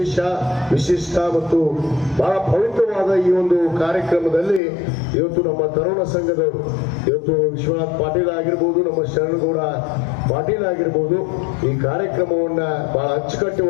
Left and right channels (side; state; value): right; drops out; at 4.6 s